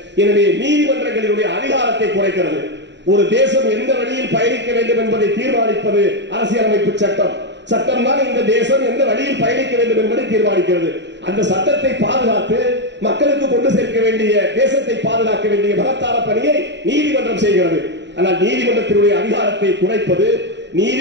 எனவே நீதிமன்றங்களினுடைய அதிகாரத்தை குறைக்கிறது. ஒரு தேசம் எந்த வழியில் பயணிக்க வேண்டும் என்பதை தீர்மானிப்பது அரசியலமைப்பு சட்டம். சட்டம் தான் இந்த தேசம் எந்த வழியில் பயணிக்க வேண்டும் என்பதை தீர்மானிக்கிறது. அந்த சட்டத்தை பாதுகாத்து மக்களுக்கு கொண்டு சேர்க்க வேண்டிய, தேசத்தை பாதுகாக்க வேண்டிய மகத்தான பணியை நீதிமன்றம் செய்கிறது. ஆனால் நீதிமன்றத்தினுடைய அதிகாரத்தை குறைப்பது,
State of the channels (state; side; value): late; left; 0.52 ms